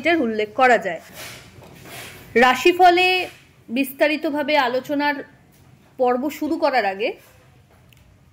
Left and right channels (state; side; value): identical; both; correlation 1.00